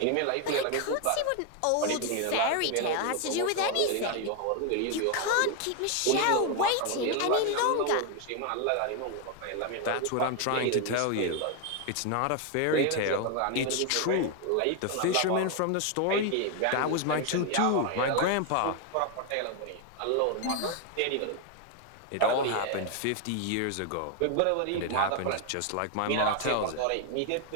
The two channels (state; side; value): different; both; correlation 0.01